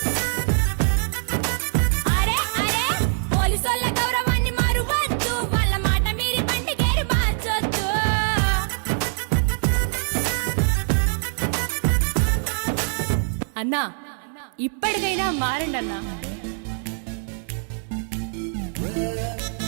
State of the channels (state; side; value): silent; left; 63 dB below the other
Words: అరే అరే పోలీసోళ్ళ గౌరవాన్ని మరువద్దు, వాళ్ళ మాట మీరి బండి గేరు మార్చొద్దు. అన్నా ఇప్పటికైనా మారండి అన్నా.